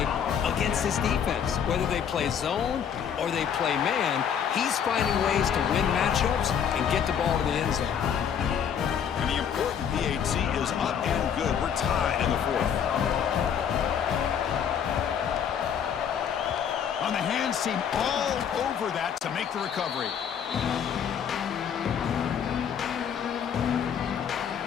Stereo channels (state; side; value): quieter; right; 8.1 dB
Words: against this defense. Whether they play zone or they play man, he's finding ways to win matchups and get the ball to the end zone. And the important PAT is up and good. We're tied in the 4th. On the hands team, all over that to make the recovery.